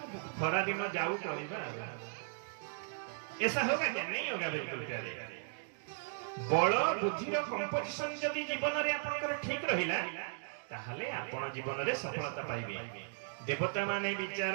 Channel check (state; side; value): silent; left; digital silence